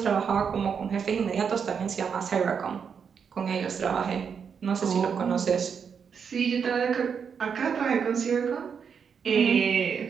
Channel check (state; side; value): quieter; left; 6.7 dB